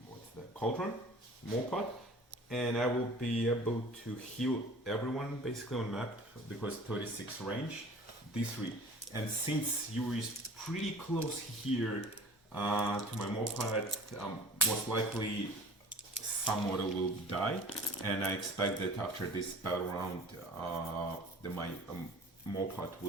What's that? Cauldron. Mopot, and I will be able to heal everyone basically on map because 36 range, D3. And since Yuri is pretty close here to my Mopot, most likely some model will die, and I expect that after this battle round, my Mopot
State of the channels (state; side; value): normal; both; correlation 0.44